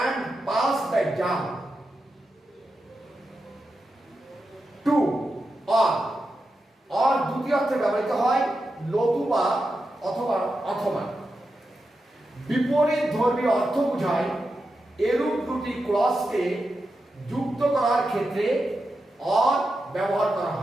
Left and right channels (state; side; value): normal; both; correlation 0.89